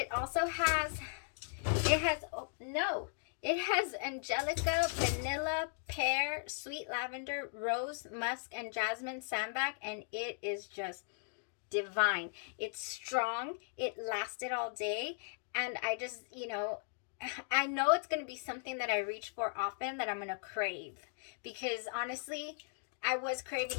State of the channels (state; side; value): silent; right; digital silence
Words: also has, it has Angelica, vanilla, pear, sweet lavender, rose, musk, and jasmine sambac, and it is just divine. It's strong. It lasted all day, and I just, I know it's going to be something that I reach for often, that I'm going to crave, because honestly, I was